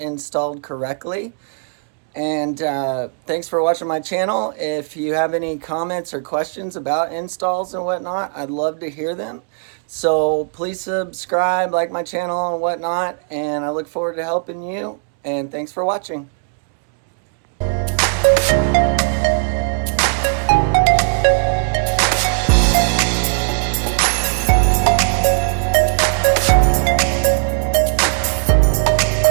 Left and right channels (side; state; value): left; silent; 67 dB below the other